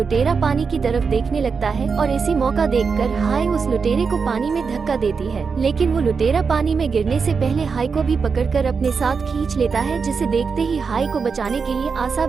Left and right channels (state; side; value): quieter; left; 5.4 dB